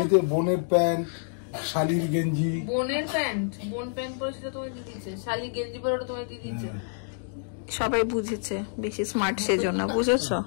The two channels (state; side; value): silent; right; digital silence